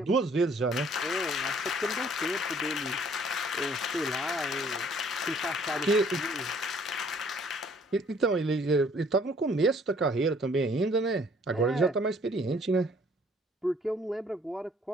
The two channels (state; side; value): normal; both; correlation 0.59